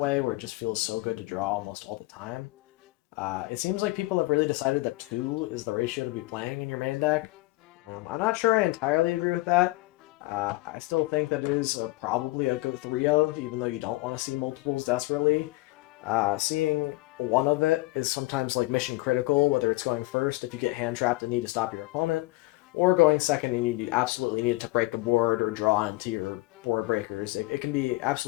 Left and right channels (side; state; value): right; quieter; 20.6 dB